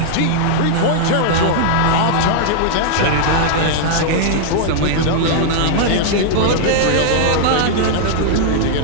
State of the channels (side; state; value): both; different; correlation -0.01